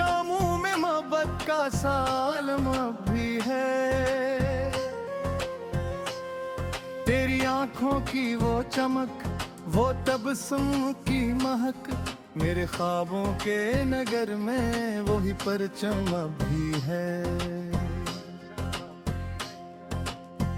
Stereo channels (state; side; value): identical; both; correlation 1.00